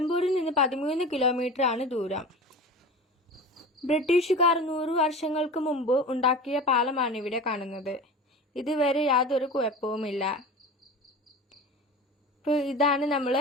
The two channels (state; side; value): normal; both; correlation 0.33